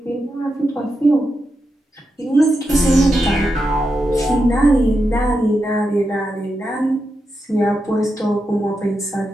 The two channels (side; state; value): both; normal; correlation 0.87